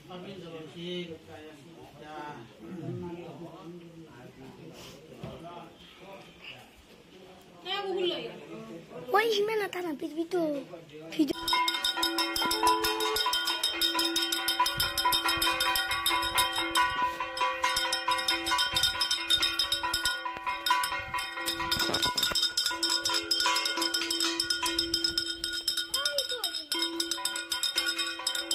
jolosik kaya sida. Why himan ata na pito video.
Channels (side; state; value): both; identical; correlation 1.00